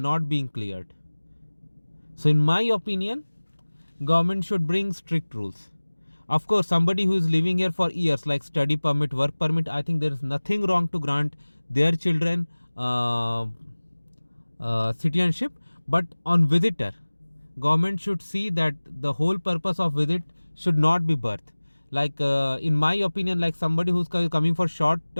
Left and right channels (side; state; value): both; inverted; correlation -1.00